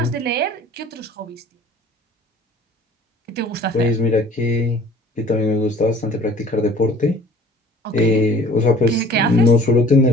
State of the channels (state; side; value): normal; both; correlation 0.49